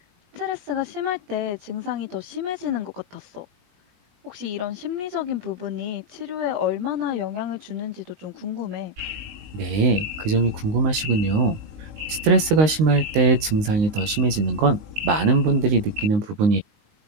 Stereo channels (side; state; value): left; late; 19 ms